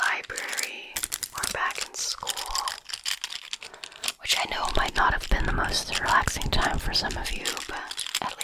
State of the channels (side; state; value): both; identical; correlation 1.00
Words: or back in school, which I know might not have been the most relaxing time for some of you, but at